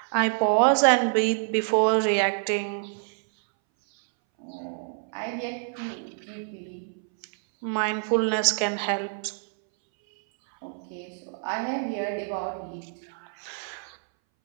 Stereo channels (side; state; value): left; silent; 60 dB below the other